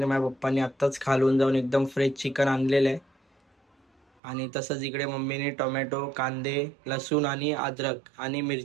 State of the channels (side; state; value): left; drops out; at 4.0 s